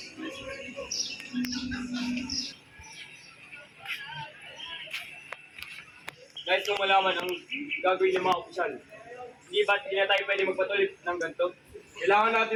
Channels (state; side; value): identical; both; correlation 1.00